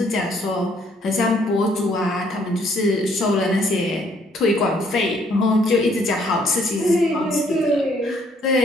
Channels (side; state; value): both; normal; correlation 0.65